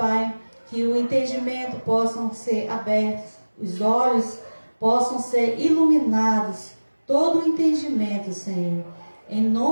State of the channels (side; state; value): both; inverted; correlation -1.00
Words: que o entendimento possam ser abertos, os olhos possam ser iluminados, todo o entendimento, Senhor, em